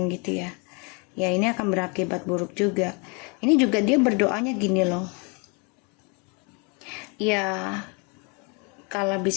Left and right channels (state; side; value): quieter; right; 32.6 dB